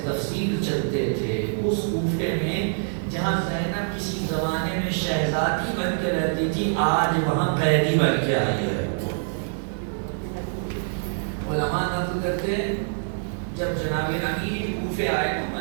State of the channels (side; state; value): left; silent; digital silence